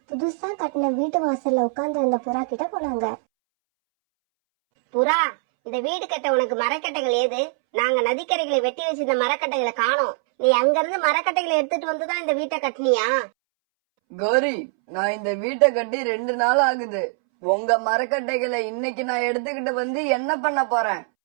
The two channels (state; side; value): silent; left; 64 dB below the other